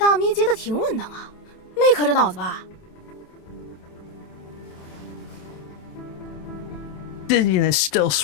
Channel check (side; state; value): right; late; 27 ms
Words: 咪接的挺稳当啊，没磕着脑子吧？ Dizziness still